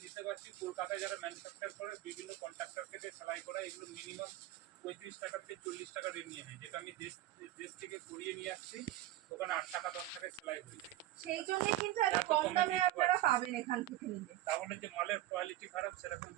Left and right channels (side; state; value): left; quieter; 14.8 dB